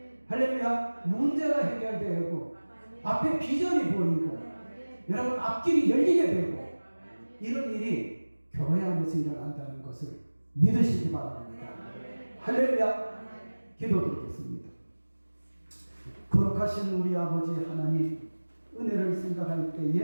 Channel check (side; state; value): both; inverted; correlation -1.00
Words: 할렐루야 문제가 해결되고 앞에 비전이 보이고 여러분 앞길이 열리게 되고 이런 일이 교회 안에서 일어난다는 것을 믿으시기 바랍니다. 할렐루야. 기도드리겠습니다. 거룩하신 우리 아버지 하나님 은혜를 생각할